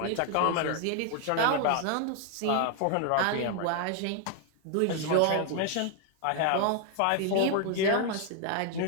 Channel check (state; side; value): different; both; correlation 0.00